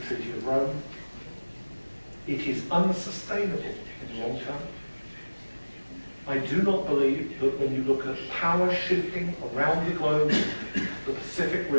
of Rome. It is unsustainable in the long term. I do not believe that when you look at power shifting around the globe, the Pacific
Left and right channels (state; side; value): inverted; both; correlation -1.00